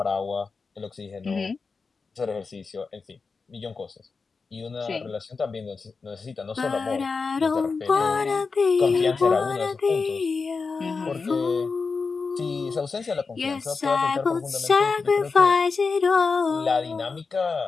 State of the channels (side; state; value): right; quieter; 4.6 dB